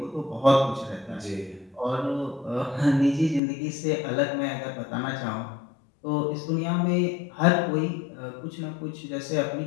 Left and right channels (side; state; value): right; drops out; at 3.4 s